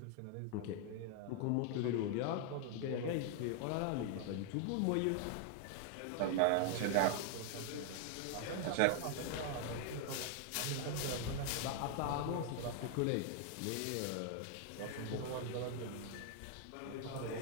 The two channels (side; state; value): both; different; correlation 0.00